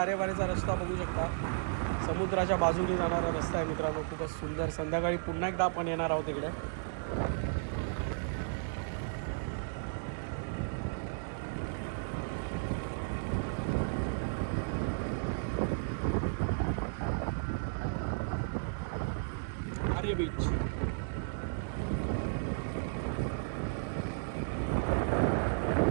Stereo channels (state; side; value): silent; left; digital silence